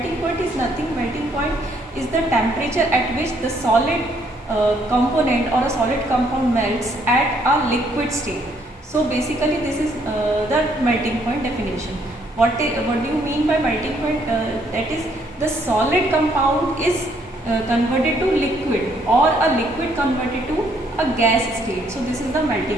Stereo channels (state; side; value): normal; both; correlation 0.68